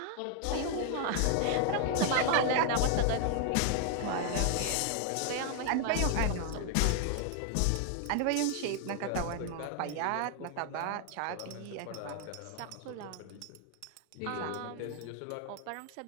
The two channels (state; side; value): different; both; correlation 0.00